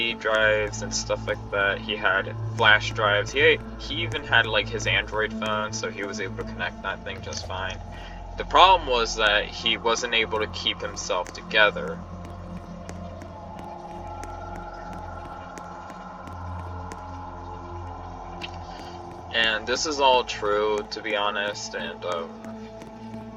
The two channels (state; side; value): identical; both; correlation 1.00